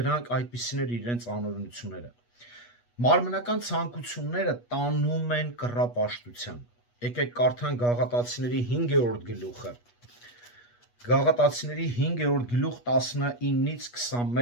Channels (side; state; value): right; late; 8.3 ms